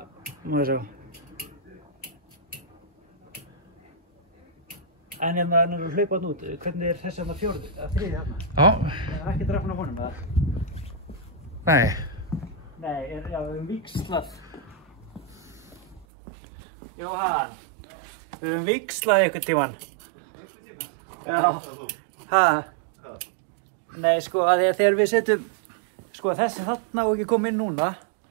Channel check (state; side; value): drops out; left; at 16.1 s